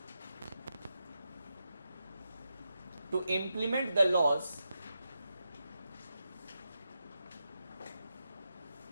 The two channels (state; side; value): inverted; both; correlation -0.87